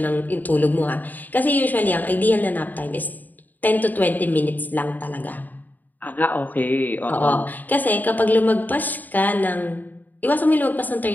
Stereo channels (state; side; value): late; right; 0.085 ms